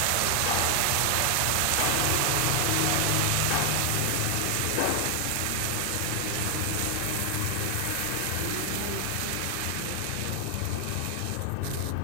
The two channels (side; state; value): both; different; correlation 0.00